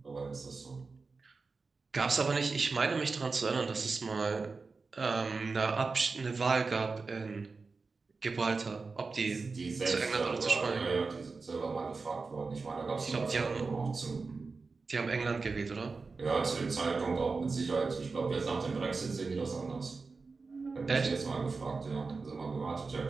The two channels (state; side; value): quieter; left; 4.3 dB